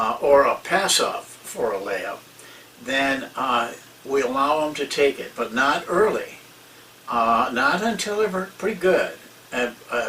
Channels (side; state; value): both; identical; correlation 1.00